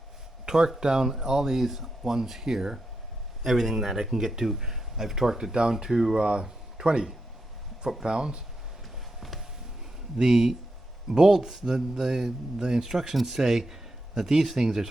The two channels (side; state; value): both; normal; correlation 0.86